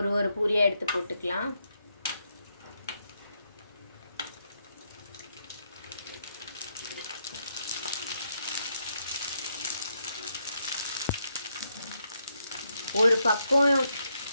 பூரியை எடுத்து போட்டுக்கலாம். ஒரு பக்கம்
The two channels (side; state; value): both; inverted; correlation -0.79